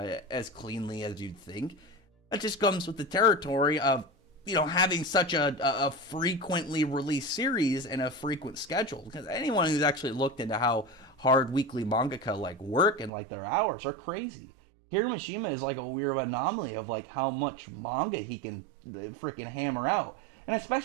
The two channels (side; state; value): left; drops out; at 13.1 s